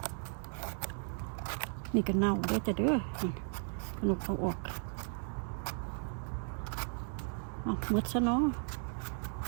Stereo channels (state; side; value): silent; left; 54 dB below the other